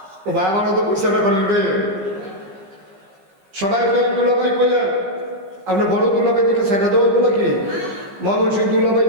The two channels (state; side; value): late; left; 15 ms